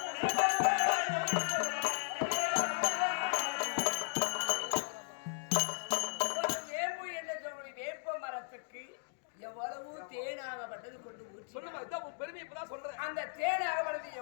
எவ்வளவு தேனாகப்பட்டது கொண்டு ஊற்றி அந்த தேனாகப்பட்டது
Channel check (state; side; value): silent; right; digital silence